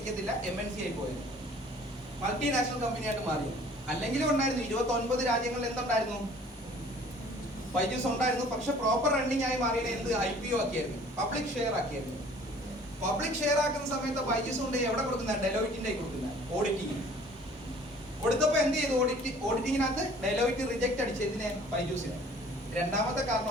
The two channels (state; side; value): normal; both; correlation 0.52